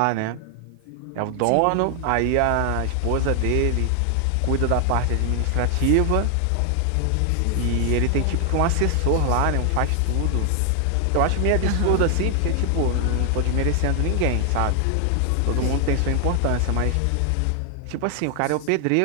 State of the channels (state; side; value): different; both; correlation 0.00